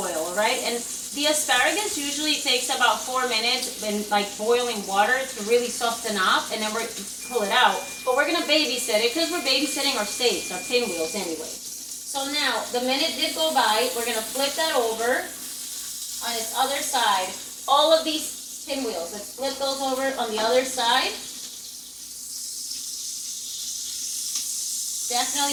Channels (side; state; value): both; identical; correlation 1.00